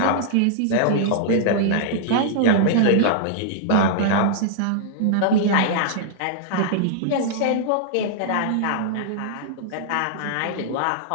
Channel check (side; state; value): both; different; correlation -0.01